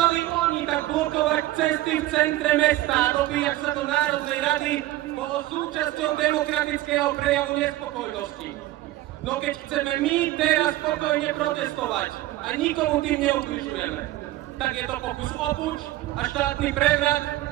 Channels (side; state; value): left; quieter; 16.1 dB